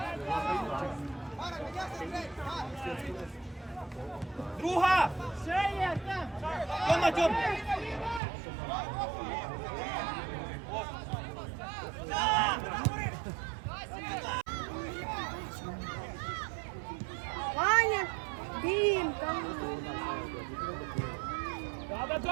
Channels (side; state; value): left; drops out; at 8.2 s